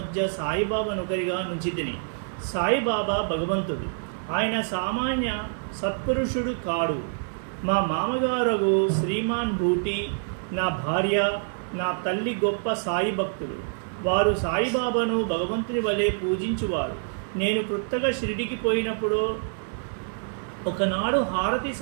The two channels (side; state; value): left; silent; digital silence